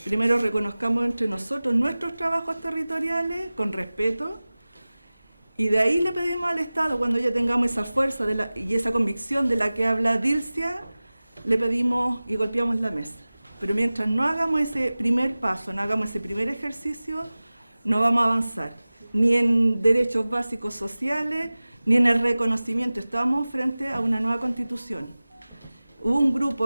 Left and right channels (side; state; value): both; inverted; correlation -0.98